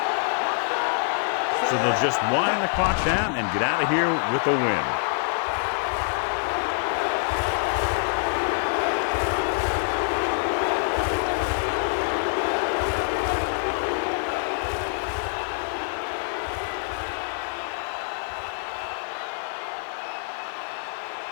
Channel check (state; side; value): silent; right; 61 dB below the other